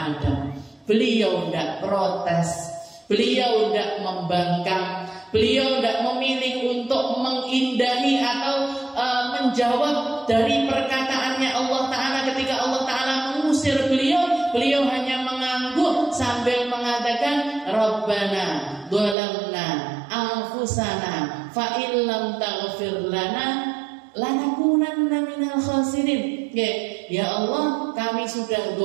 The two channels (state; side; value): drops out; left; at 19.2 s